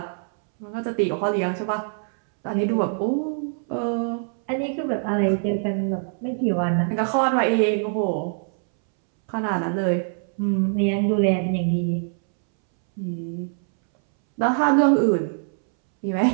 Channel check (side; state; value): left; silent; 63 dB below the other